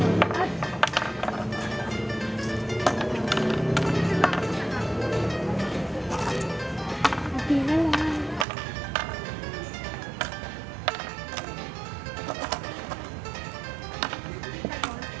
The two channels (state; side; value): drops out; left; at 8.5 s